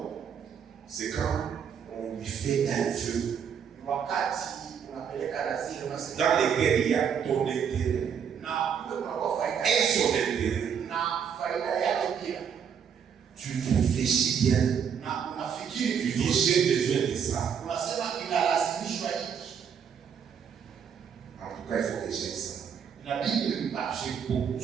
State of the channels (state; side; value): quieter; left; 7.5 dB